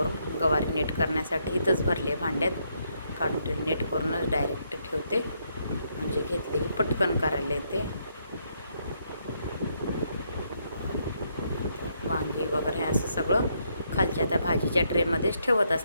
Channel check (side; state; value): both; inverted; correlation -0.75